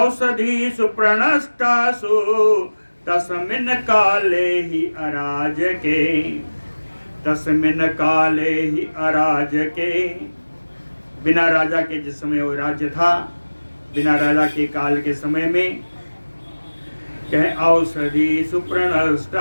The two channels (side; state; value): both; inverted; correlation -1.00